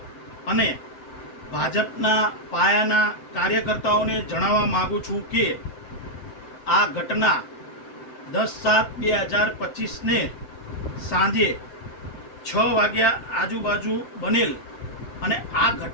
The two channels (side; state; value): right; late; 7.9 ms